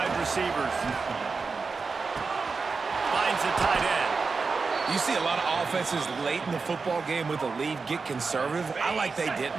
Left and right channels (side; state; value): left; quieter; 4.6 dB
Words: receivers. Finds the tight end. You see a lot of offenses late in the football game with a lead get conservative. I like they didn't.